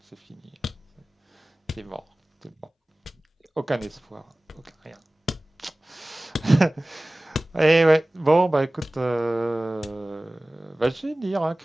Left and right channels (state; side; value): normal; both; correlation 0.98